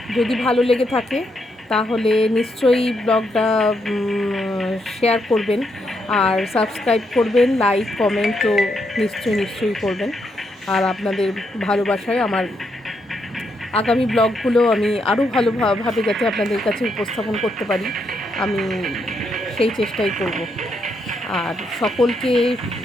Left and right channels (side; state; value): both; normal; correlation 0.79